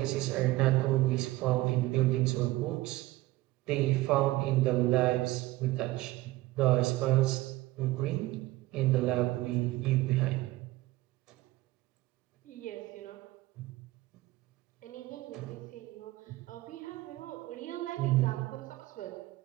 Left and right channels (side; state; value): left; quieter; 18.3 dB